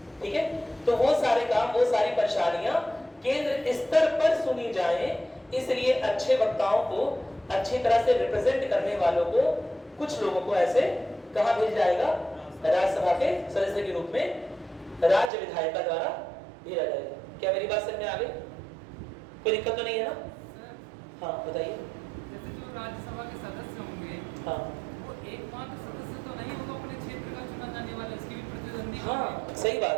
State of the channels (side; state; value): left; drops out; at 15.3 s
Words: ठीक है। तो वो सारे काम, वो सारी परेशानियां केंद्र स्तर पर सुनी जाए, इसलिए अच्छे वक्ताओं को, अच्छी तरह से रिप्रेजेंट करने वालों को, कुछ लोगों को ऐसे कहां भेजा जाएगा? राज्यसभा के सदस्य के रूप में राज्य विधायिका द्वारा भेजा जाएगा। क्या मेरी बात समझ में आ गई? कोई दिक्कत तो नहीं है ना? हाँ बताइए। जैसे जो राज्यसभा के सदस्य होंगे, हाँ, वो एकमात्र सदस्य तो नहीं होगा अपने क्षेत्र का चुना जाने वाला, इसकी भी प्रतिद्वंदी। हाँ सही